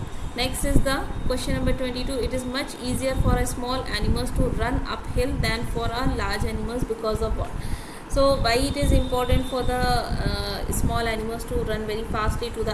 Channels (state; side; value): identical; both; correlation 1.00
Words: Next is the question number 22. It is much easier for a small animals to run uphill than for a large animals, because of what? So why it is important for the small animals to run very fastly to the